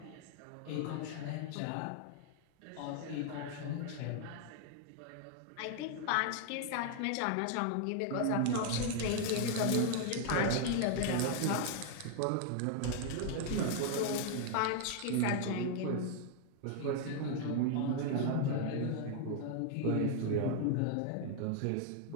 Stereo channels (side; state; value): both; different; correlation 0.00